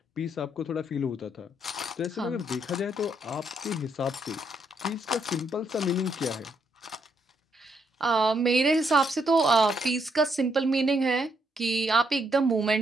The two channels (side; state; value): both; normal; correlation 0.75